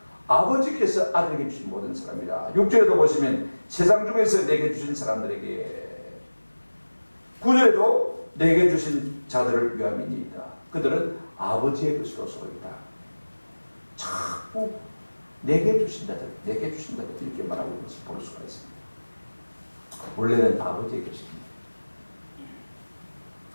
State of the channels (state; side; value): inverted; both; correlation -1.00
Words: 아버지께서 아들에게 주신 모든 사람이라. 6절에도 보시면 세상 중에서 내게 주신 사람들에게, 9절에도 내게 주신 자들을 위함이니이다. 그들은 아버지의 것이로소이다. 자꾸 내게 주신 자들, 내게 주신 자들 이렇게 말하고 있는 것을 볼 수가 있습니다. 원래는 아버지의 것입니다.